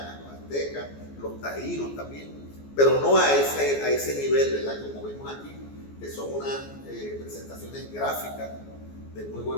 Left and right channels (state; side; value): late; right; 14 ms